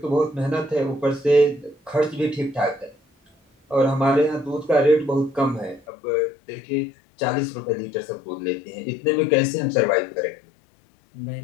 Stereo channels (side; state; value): right; drops out; at 5.8 s